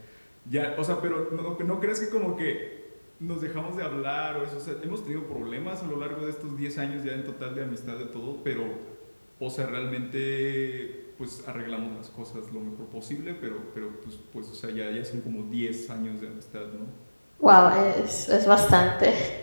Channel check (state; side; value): inverted; both; correlation -1.00